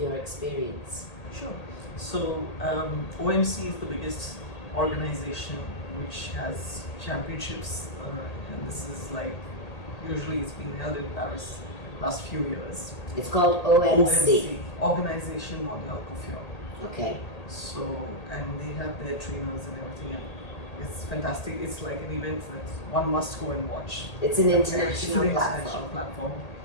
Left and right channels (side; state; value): right; late; 1.8 ms